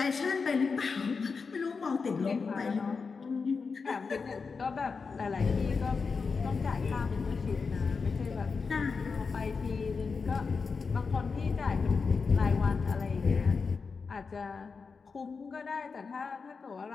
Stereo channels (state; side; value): quieter; right; 5.0 dB